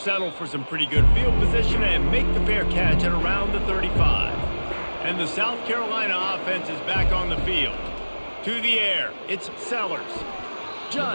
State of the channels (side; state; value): both; inverted; correlation -1.00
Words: for some pretty good field position and make the fair catch at around the 35. And the South Carolina offense is back on the field. To the air, it's Sellers.